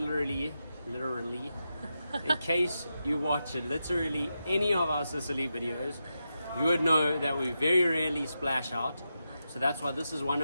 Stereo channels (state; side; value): inverted; both; correlation -0.88